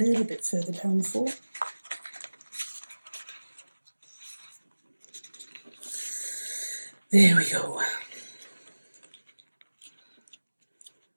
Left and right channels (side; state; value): both; inverted; correlation -1.00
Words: bit further down for. There we go.